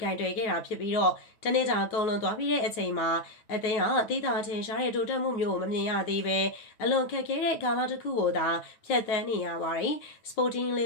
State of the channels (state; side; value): late; right; 9.2 ms